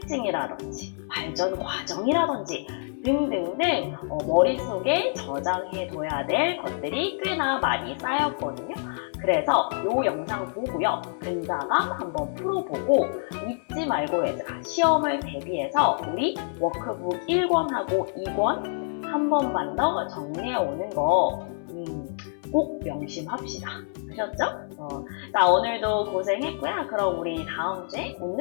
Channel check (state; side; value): silent; right; 60 dB below the other